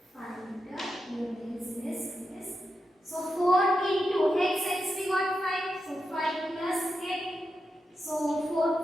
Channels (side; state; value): both; normal; correlation 0.88